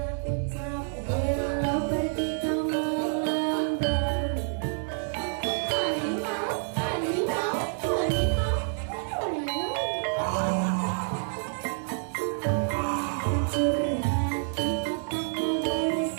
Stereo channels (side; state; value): left; silent; digital silence